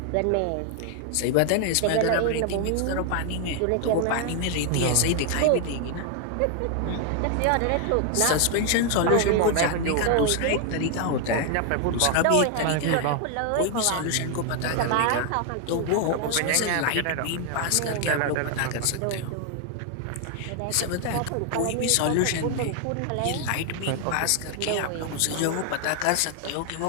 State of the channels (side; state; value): both; different; correlation 0.00